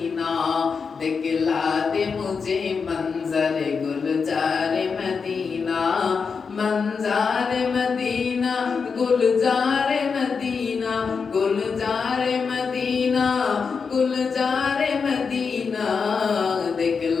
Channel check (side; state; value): right; quieter; 5.5 dB